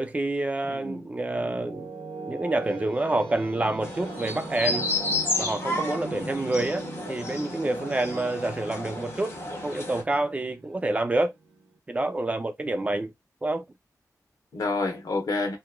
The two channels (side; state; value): both; normal; correlation 0.76